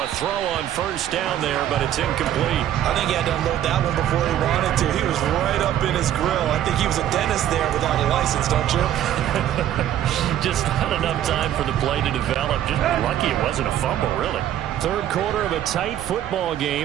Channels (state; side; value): quieter; left; 11.5 dB